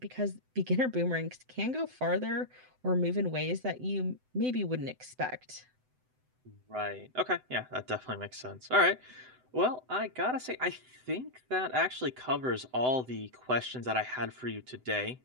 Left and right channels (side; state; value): left; late; 7.9 ms